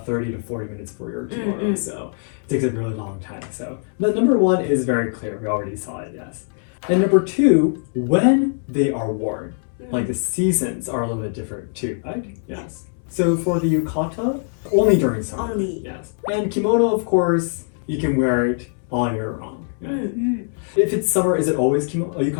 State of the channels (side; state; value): right; silent; 64 dB below the other